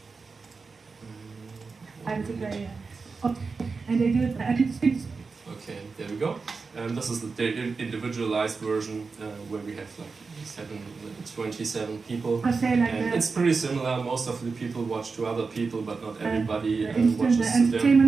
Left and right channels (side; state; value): left; quieter; 4.6 dB